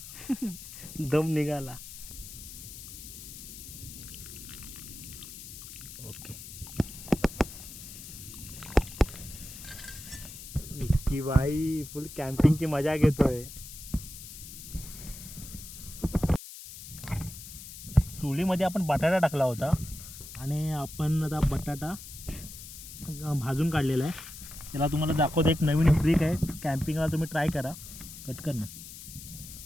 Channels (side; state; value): left; noise; hiss, 13 dB below the sound